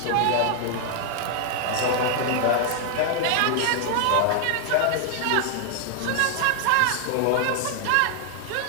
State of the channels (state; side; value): different; both; correlation 0.00